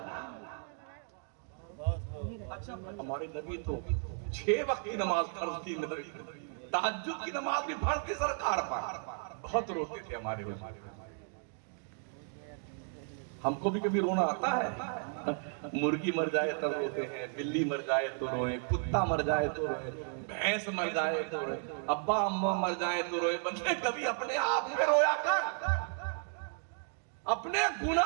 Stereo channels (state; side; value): silent; left; 55 dB below the other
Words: ہمارے نبی تو 6 وقت کی نماز فرض تھی، تہجد کی نماز بھی فرض تھی سرکار پر۔ بہت روتے تھے ہمارے حضور۔ ہم کو بھی کبھی رونا آتا ہے؟ مرغی مر جائے تب روتے ہیں، بلی مر جائے تو روئے، کتا مر جائے تو روئے، بھینس مر جائے تو روئے، ابا اماں مر جائے تو روئے۔ بندے کبھی اپنے آپ پہ رویا کر، اپنے